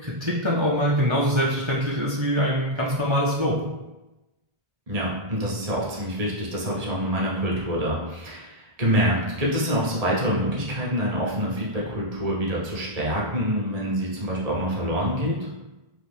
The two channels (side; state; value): left; late; 1.7 ms